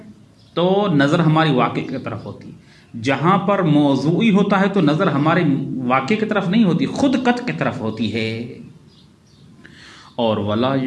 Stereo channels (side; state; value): both; identical; correlation 1.00